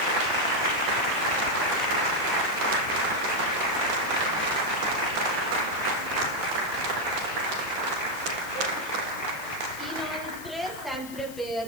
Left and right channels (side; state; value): left; noise; hiss, 16 dB below the sound